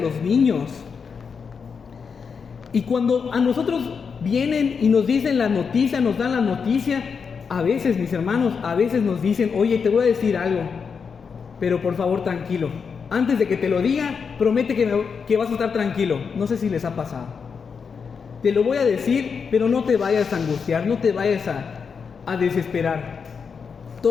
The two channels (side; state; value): right; quieter; 5.9 dB